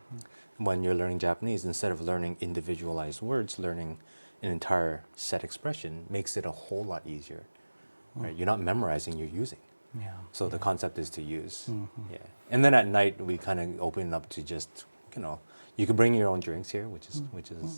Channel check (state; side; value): inverted; both; correlation -1.00